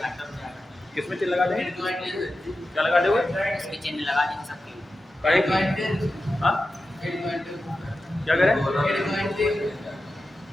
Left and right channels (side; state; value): both; normal; correlation 0.92